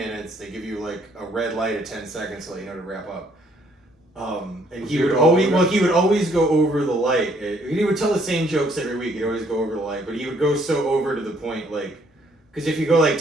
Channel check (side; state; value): both; normal; correlation 0.66